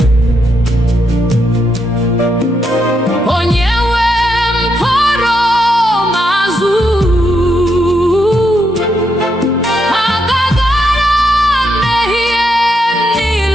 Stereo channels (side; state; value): both; normal; correlation 0.80